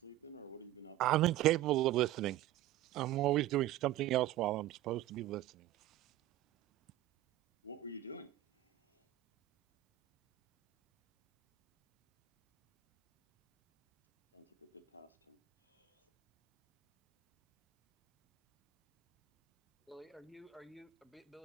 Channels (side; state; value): left; quieter; 14.5 dB